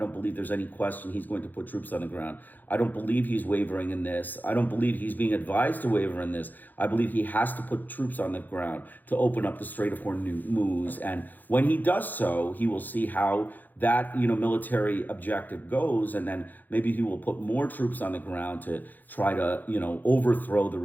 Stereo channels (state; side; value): late; right; 0.085 ms